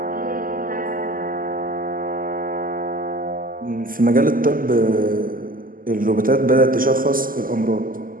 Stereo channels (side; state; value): left; late; 0.41 ms